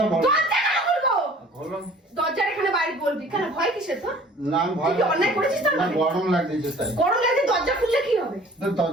বলবো। তোর থেকে খুলবো। বলো। দরজার এখানে বাইরে বলবি কেন? ভয় কিসের তোর? না আমি ভয় তুই কি অন্যায় করেছিস তোর না, মানে? গরম লাগছে তাই। গরম লাগলে দরজা খুললে কি হবে? তো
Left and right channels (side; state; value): both; normal; correlation 0.50